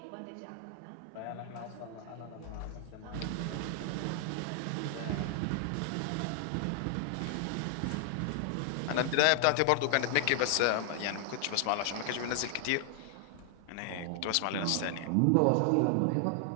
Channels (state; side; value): different; both; correlation 0.00